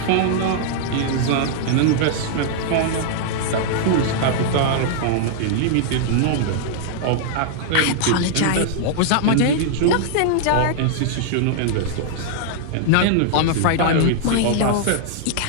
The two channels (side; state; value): both; different; correlation -0.01